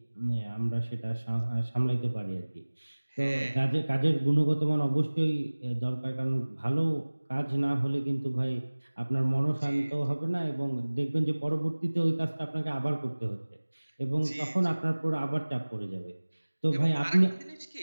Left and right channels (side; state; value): both; inverted; correlation -1.00